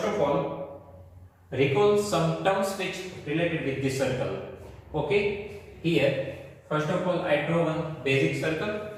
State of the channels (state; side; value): identical; both; correlation 1.00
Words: of all, recall some terms which related with this circle. Okay, here, first of all, I draw one basic circle.